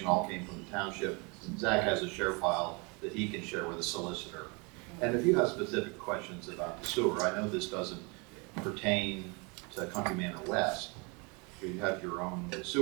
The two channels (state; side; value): quieter; left; 30.6 dB